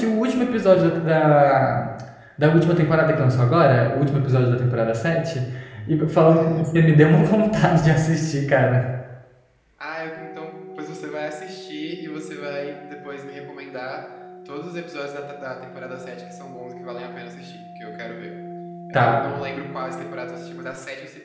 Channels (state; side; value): identical; both; correlation 1.00